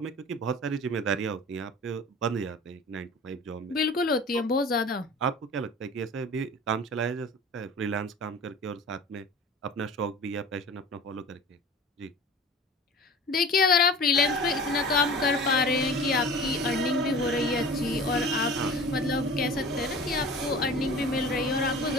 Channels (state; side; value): normal; both; correlation 0.40